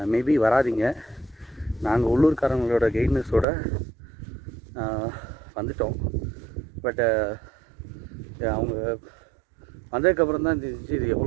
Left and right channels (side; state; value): left; drops out; at 3.5 s